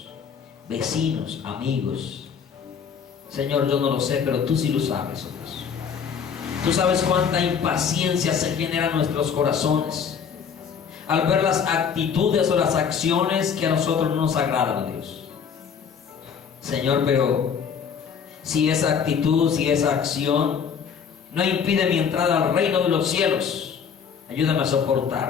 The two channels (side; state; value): right; quieter; 6.9 dB